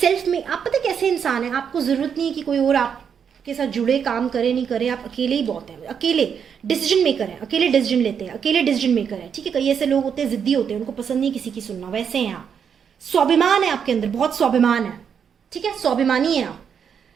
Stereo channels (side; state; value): left; quieter; 7.4 dB